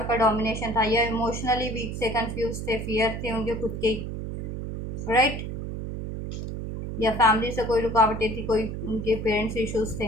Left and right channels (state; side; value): noise; right; hum, 6 dB below the sound